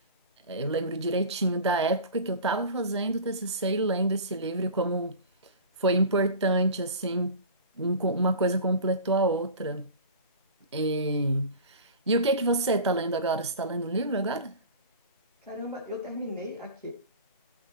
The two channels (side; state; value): both; inverted; correlation -0.36